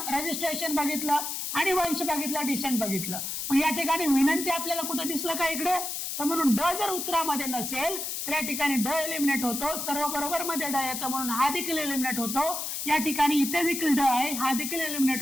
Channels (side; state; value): left; noise; hiss, 4 dB below the sound